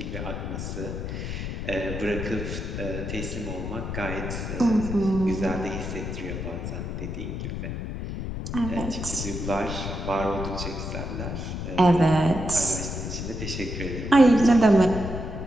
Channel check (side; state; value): left; noise; rumble, 5 dB below the sound